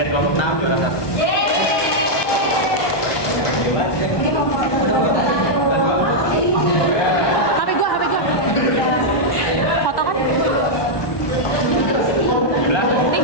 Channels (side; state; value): right; late; 1.2 ms